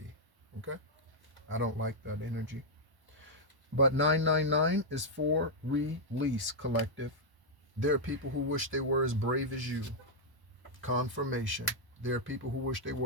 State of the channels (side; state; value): left; late; 1.1 ms